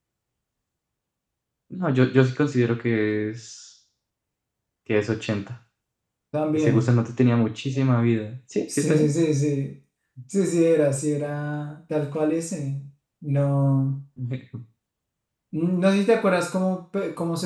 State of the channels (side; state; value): both; identical; correlation 1.00